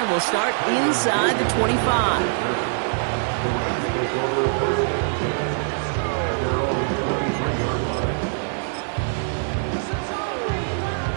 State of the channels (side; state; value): left; silent; digital silence